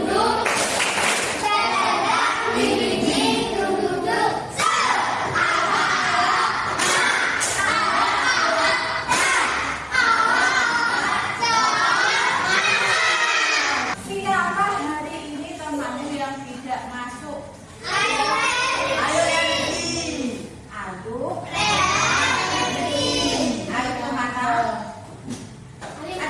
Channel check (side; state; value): both; identical; correlation 1.00